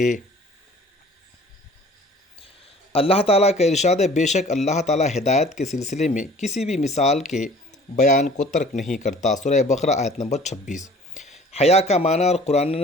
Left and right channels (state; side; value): normal; both; correlation 0.50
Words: اللہ تعالیٰ کا ارشاد ہے، بے شک اللہ تعالیٰ ہدایت کے سلسلے میں کسی بھی مثال کے بیان کو ترک نہیں کرتا۔ سورہ بقرہ آیت نمبر 26۔ حیا کا معنی اور